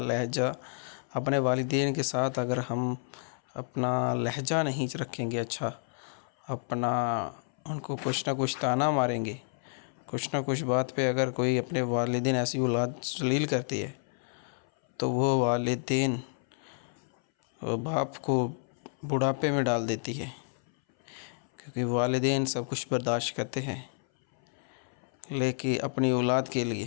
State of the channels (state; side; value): silent; right; 58 dB below the other